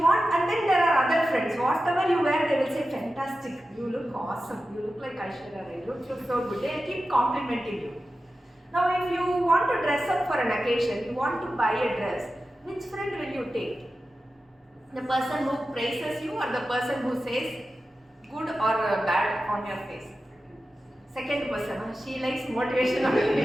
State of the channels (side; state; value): both; normal; correlation 0.93